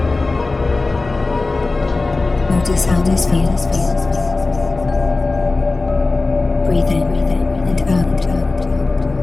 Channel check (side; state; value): right; quieter; 3.4 dB